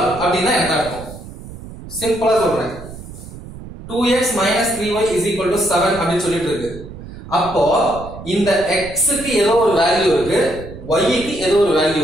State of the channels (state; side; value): noise; right; rumble, 14 dB below the sound